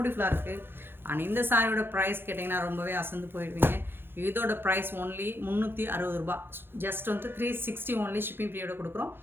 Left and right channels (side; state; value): left; late; 0.10 ms